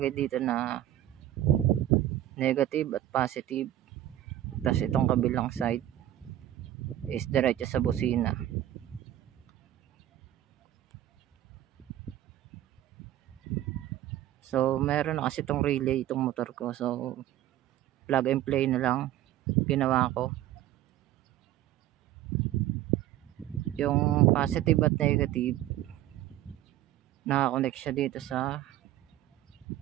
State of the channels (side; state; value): left; quieter; 13.2 dB